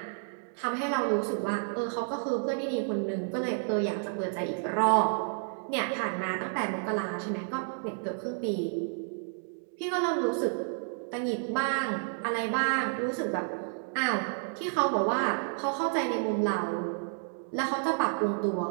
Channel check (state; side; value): silent; left; 57 dB below the other